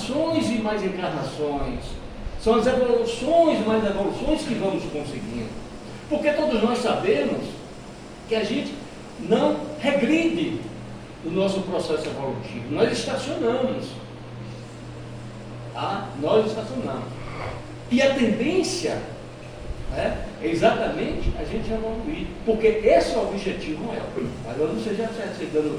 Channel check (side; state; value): both; identical; correlation 1.00